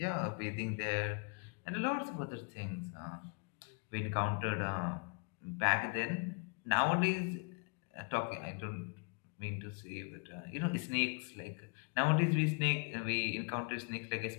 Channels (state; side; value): quieter; right; 36.5 dB